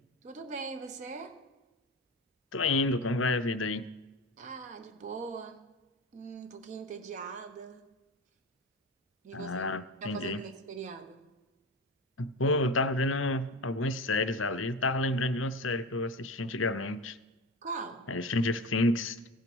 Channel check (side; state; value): both; normal; correlation 0.27